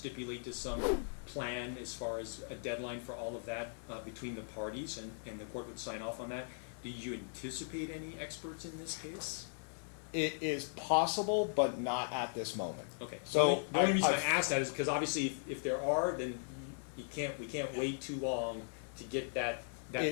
to some plan as far as a deadline for all of that between the parties, and the court would sign off on that. Do you anticipate any experts in this case? It is possible, but not at this moment. Okay. So the only reason I asked that is because obviously if there are, then we can't wait too long to get that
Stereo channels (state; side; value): silent; right; digital silence